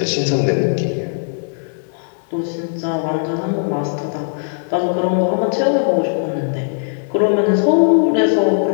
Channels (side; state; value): right; silent; 67 dB below the other